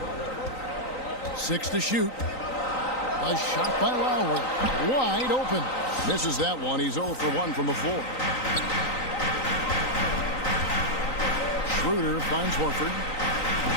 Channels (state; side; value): late; right; 3.9 ms